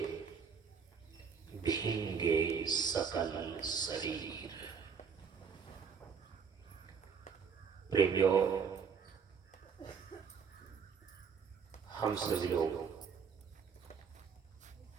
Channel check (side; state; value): left; quieter; 6.3 dB